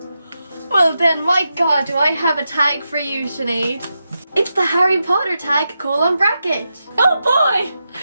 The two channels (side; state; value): both; inverted; correlation -0.88